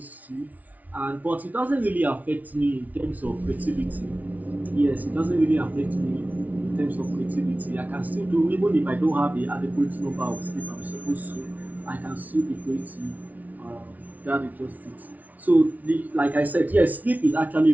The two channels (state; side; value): late; left; 0.074 ms